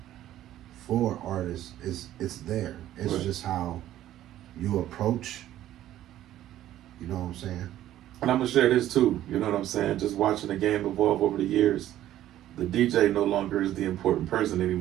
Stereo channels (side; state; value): left; quieter; 13.0 dB